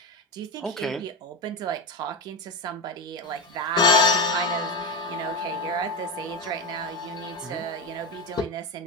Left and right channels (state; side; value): normal; both; correlation 0.16